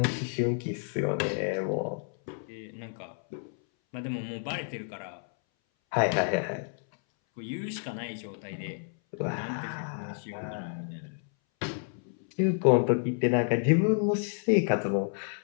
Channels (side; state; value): right; silent; 58 dB below the other